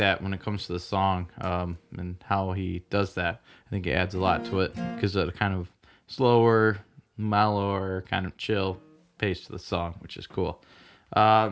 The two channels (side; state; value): both; identical; correlation 1.00